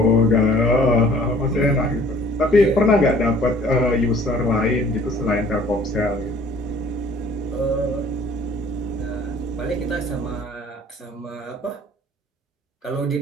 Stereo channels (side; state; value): both; normal; correlation 0.54